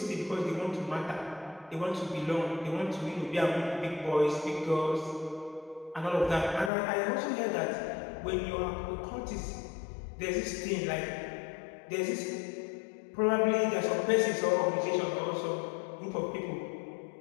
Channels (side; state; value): right; drops out; at 6.7 s